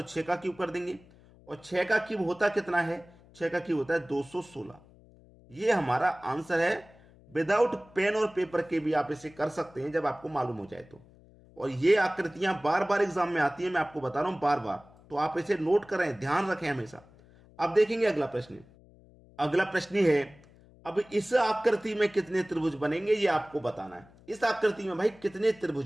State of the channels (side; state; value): left; noise; hum, 25 dB below the sound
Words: 6 का क्यूब कर देंगे। और 6 का क्यूब होता कितना है, 6 का क्यूब होता है 216। ये हमारा आंसर है। विदाउट पेन और पेपर के भी आप इसे कर सकते हैं जब आपको मालूम हो जाए तो। और ये आकृतियां बार बार एग्जाम में आती हैं, मैं आपको बता रहा हूं बार बार, तो आप इसे नोट करें, ध्यान रखें हमेशा। अब देखेंगे अगला प्रश्न। अगला प्रश्न है, अब इस आकृति में कितने त्रिभुज बनेंगे ये आपको बताना है। इस आकृति में भाई कितने